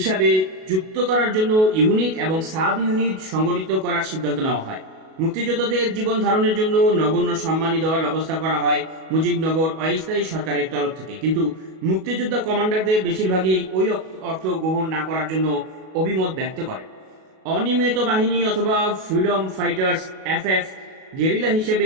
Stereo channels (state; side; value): late; left; 37 ms